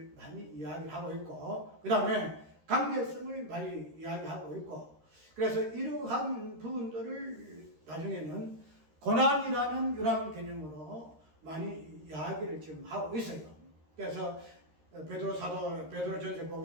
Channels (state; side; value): late; left; 13 ms